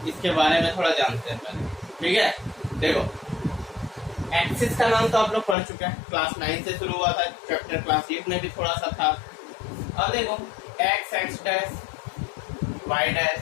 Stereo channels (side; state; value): right; drops out; at 5.6 s